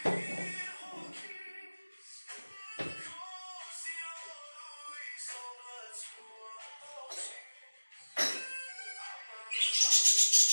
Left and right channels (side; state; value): both; inverted; correlation -1.00